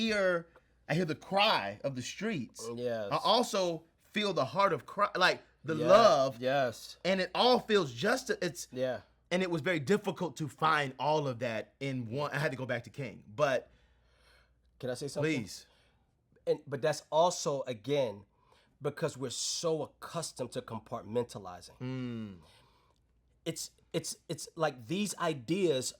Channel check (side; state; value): both; identical; correlation 1.00